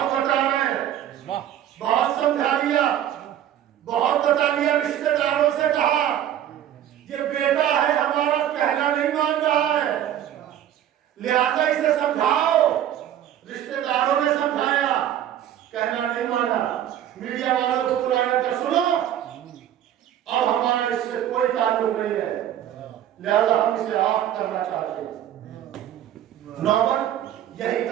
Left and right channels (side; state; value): left; quieter; 11.1 dB